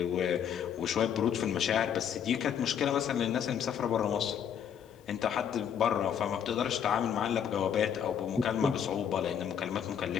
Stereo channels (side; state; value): right; quieter; 8.5 dB